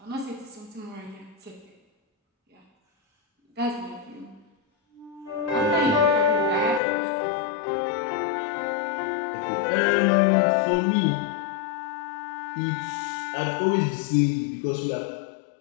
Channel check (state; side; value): drops out; right; at 6.8 s